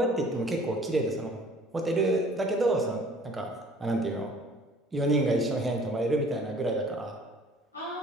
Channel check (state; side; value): normal; both; correlation 0.52